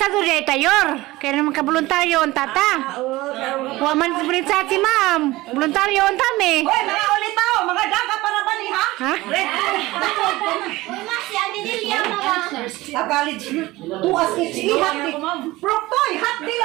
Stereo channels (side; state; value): left; quieter; 19.2 dB